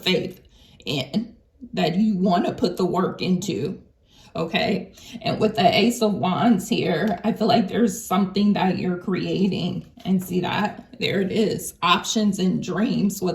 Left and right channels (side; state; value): both; identical; correlation 1.00